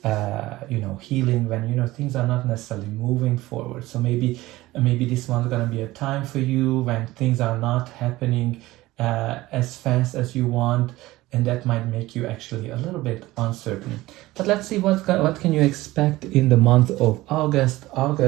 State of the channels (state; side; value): quieter; left; 18.1 dB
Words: healing when things are not necessarily moving forward. So maybe this one's gonna be a time for you when things are not happening as fast as you want, and that might make you actually a little bit uncertain. But let's see what can you expect in the month of August.